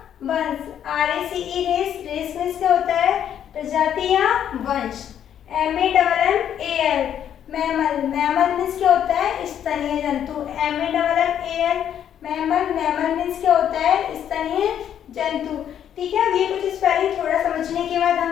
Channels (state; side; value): quieter; right; 9.7 dB